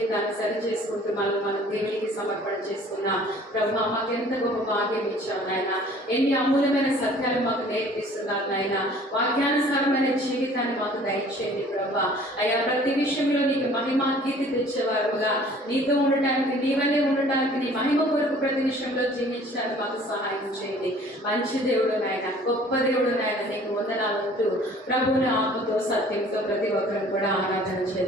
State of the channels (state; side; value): normal; both; correlation 0.52